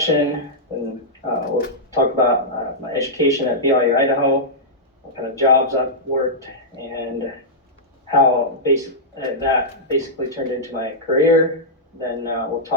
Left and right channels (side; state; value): both; normal; correlation -0.11